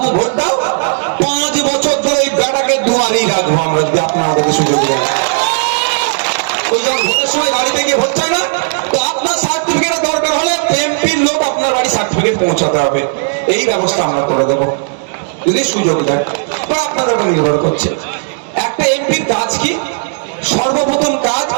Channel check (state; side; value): silent; left; digital silence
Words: ভোট দাও, 5 বছর ধরে এই বেটাকে দুয়ারেই রাখবো আমরা, যদি আপনারা আমাদেরকে সুযোগ দেন। ওই যখন ভোটের সময় বাড়িতে গিয়ে ভোট চায় না, তো আপনার সার্টিফিকেট দরকার হলে এমপির লোক আপনার বাড়ি সার্টিফিকেট পৌঁছাতে হবে। এই ব্যবস্থা আমরা করে দেবো যদি সুযোগ দেন, বা আপনাদের উপর নির্ভর করছে। একটা এমপির কাজ কি? সর্বপ্রথম কাজ,